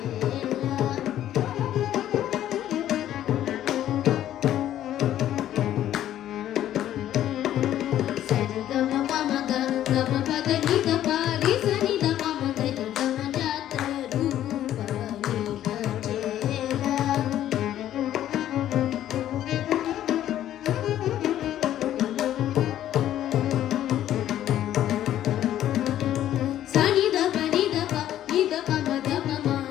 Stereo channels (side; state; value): right; quieter; 12.0 dB